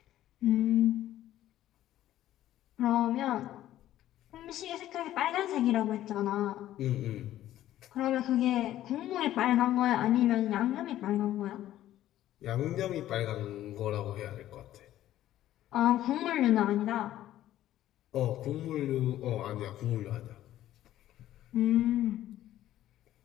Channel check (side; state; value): right; quieter; 13.3 dB